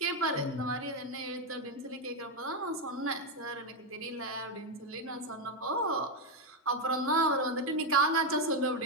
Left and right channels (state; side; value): normal; both; correlation 0.05